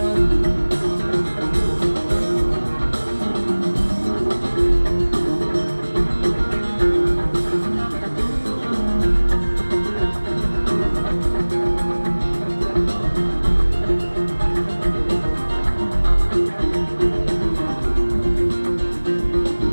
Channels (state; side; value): inverted; both; correlation -1.00